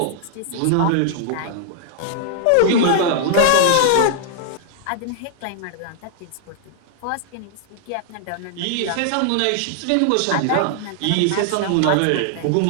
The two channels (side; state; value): both; different; correlation -0.01